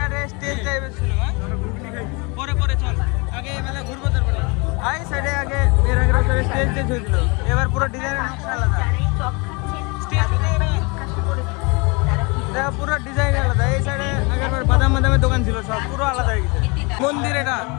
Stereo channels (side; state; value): right; quieter; 29.1 dB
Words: স্টেজ টাইপের ছিল। পরে চল আগে মেলা ঘুরবো, তারপরে এই সাইডে আগে এর আগের বছরে স্টেজ হয়েছিল, এবার পুরো ডিজাইনের নকশা আলাদা। দেখো পুরো ডিজাইন আলাদা। এই সাইডে আগের বার বাদামের দোকান ছিল, সব পুরো আলাদা হয়ে গেছে। মন্দির, এটা